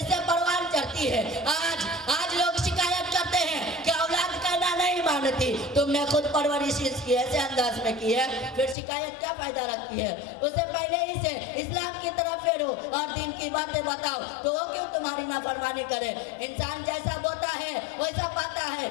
سے پروان چڑھتی ہے آج لوگ شکایت کرتے ہیں کہ اولاد کہنا نہیں مانتی تم نے خود پرورش اس کی ایسے انداز میں کی ہے پھر شکایت کیا فائدہ رکھتی ہے اسے پہلے ہی سے اسلام کی طرف پھیرو اور دین کی باتیں بتاؤ تو وہ کیوں تمہاری نافرمانی کرے انسان جیسا بوتا ہے ویسا پاتا ہے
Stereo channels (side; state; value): right; drops out; at 8.8 s